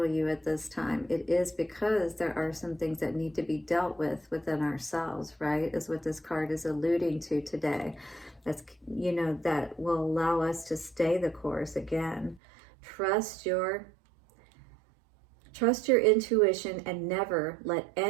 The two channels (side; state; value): left; drops out; at 12.4 s